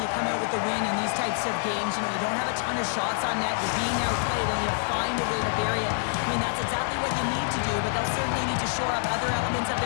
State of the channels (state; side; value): silent; right; digital silence